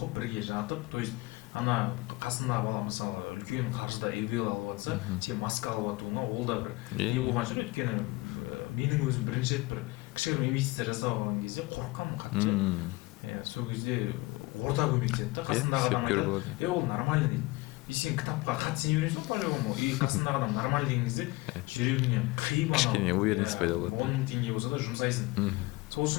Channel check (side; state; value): right; quieter; 22.1 dB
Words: бірге жатып, то есть ана қасындағы бала мысалы үлкен қаржыда эвел алып жатса, сен маска алып жатуыңа ол да бір не болған шығар. Өйткені менің өзім бірінші рет бір кішігірім инвестиция жасап алған кезде қорыққанмын қатты. Сол кезде орта көмектеседі да, қасындағы адам айтады, ол нормально дейді. И сен кітапқа қатты сене бересің ғой по-любому. И қасындағы адам нормально деген кезде жүрегіңнен қиып анау 10 000 теңге болса да жұмсайсың. Сол